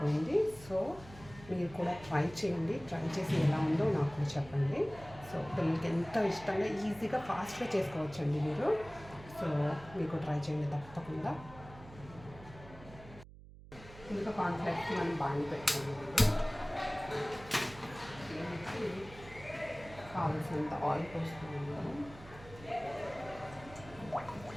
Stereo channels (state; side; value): noise; right; hum, 18 dB below the sound